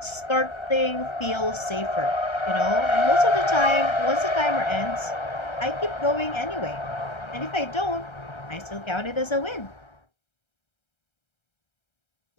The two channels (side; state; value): right; late; 1.3 ms